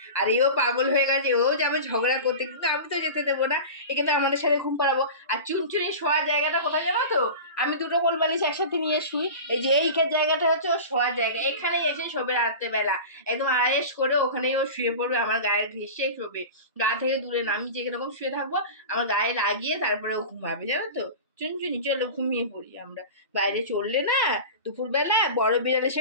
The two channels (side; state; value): both; inverted; correlation -0.31